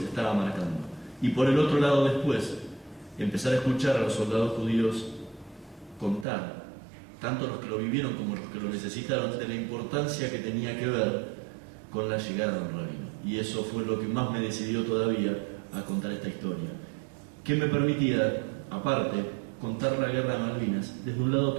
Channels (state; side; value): drops out; left; at 6.2 s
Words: estaba marcando. Y por el otro lado después, empezar a escuchar a los soldados judíos contar, tanto los que lo vivieron como los que lo necesitaron, de la importancia que tenía que ver con la llegada de un rabino. Y eso fue lo que más me decidió todavía a contar esta historia, que me permitía, aparte, contar la guerra de Malvinas desde un lado